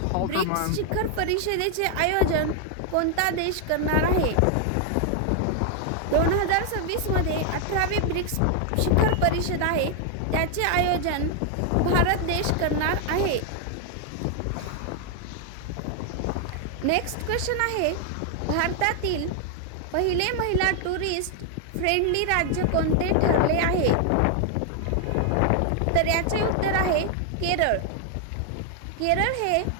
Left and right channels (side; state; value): both; different; correlation 0.00